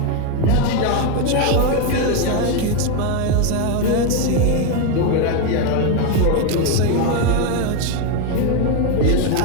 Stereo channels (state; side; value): different; both; correlation 0.02